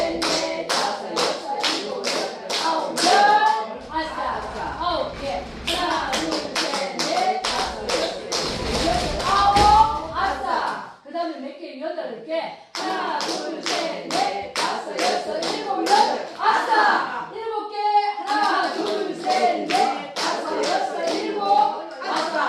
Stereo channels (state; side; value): identical; both; correlation 1.00